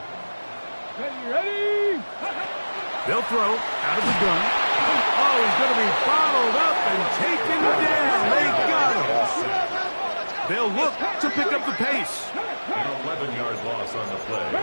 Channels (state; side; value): inverted; both; correlation -1.00